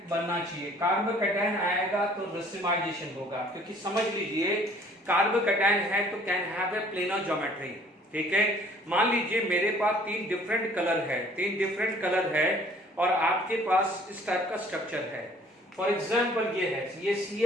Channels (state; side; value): normal; both; correlation 0.56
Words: बनना चाहिए, कार्बोकैटायन आएगा तो रेसिमाइजेशन होगा, क्योंकि समझ लीजिए कार्बोकैटायन है तो can have a planar geometry. ठीक है, मान लीजिए मेरे पास 3 डिफरेंट कलर है, 3 डिफरेंट कलर है और आपके पास इस टाइप का स्ट्रक्चर है। फॉर एग्जाम्पल ये है, ये